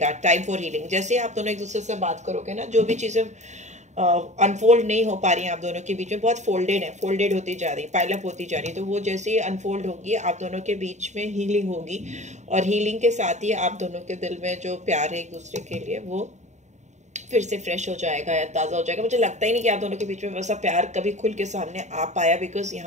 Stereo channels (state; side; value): late; left; 0.34 ms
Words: Time for healing. जैसे आप दोनों एक दूसरे से बात करोगे ना, जो भी चीज़ें अनफोल्ड नहीं हो पा रही हैं आप दोनों के बीच में, बहुत फोल्डेड होती जा रही, पाइलअप होती जा रही, तो वो जैसे ही अनफोल्ड होगी आप दोनों के बीच में हीलिंग होगी, और हीलिंग के साथ ही आप दोनों के दिल में जो प्यार है एक दूसरे के लिए वो फिर से फ्रेश हो जाएगा या ताज़ा हो जाएगा। मुझे लगता ही नहीं कि आप दोनों के बीच में वैसा प्यार कभी खुल के सामने आ पाया, बिकॉज